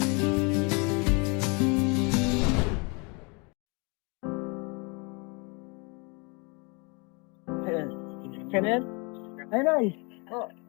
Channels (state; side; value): quieter; right; 31.2 dB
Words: Kenneth? Ay, Nay.